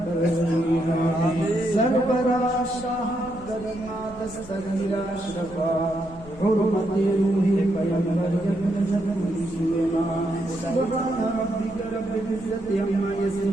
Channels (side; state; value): left; noise; rumble, 19 dB below the sound